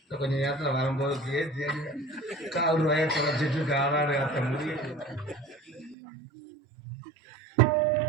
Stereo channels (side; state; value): left; drops out; at 6.0 s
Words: கொஞ்ச நேரத்துல வரும்போது பேசி கால் ரூபாய தொலைச்சிட்டு காலாடு காத்த முடியும்.